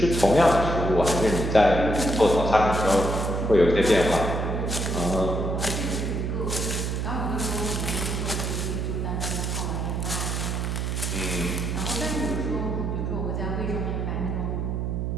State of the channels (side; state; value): right; noise; hum, 1 dB below the sound